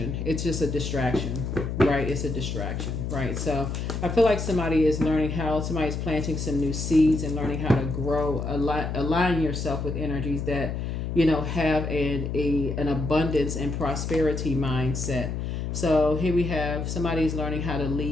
It's just a distraction, right? It's a distraction, right? So I feel like somebody's planting some new seeds and learning how to grow, align yourself with energies that, have an abundance and prosperity mindset. So here we have somebody's learning how to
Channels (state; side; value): noise; left; hum, 3 dB below the sound